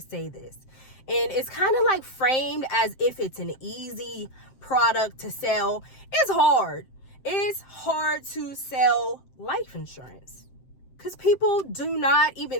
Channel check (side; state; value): right; late; 7.6 ms